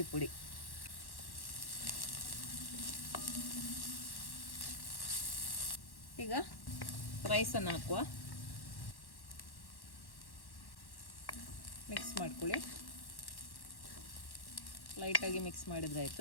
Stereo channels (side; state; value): right; late; 1.1 ms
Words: ಪುಡಿ. ಈಗ ರೈಸನ್ನು ಹಾಕುವ. ಮಿಕ್ಸ್ ಮಾಡ್ಕೊಳ್ಳಿ, ಲೈಟಾಗಿ ಮಿಕ್ಸ್